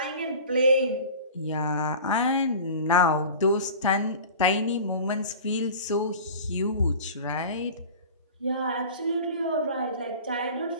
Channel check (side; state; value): both; inverted; correlation -0.38